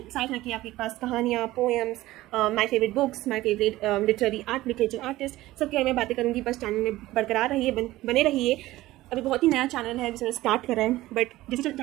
साथ रखी आपके पास कहानियाँ, poems, my favourite books, my favourite literature artist, सबके बारे में बातें करूँगी. बस चैनल में बरकरार रहिए, बने रहिए. अभी बहुत ही नया चैनल है जिसने स्टार्ट करा है, बट जैसे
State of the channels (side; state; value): left; quieter; 16.9 dB